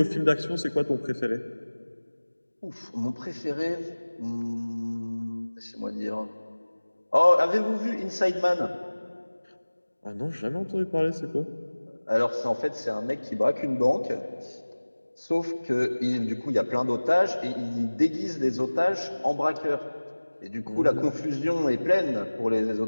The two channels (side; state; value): both; inverted; correlation -1.00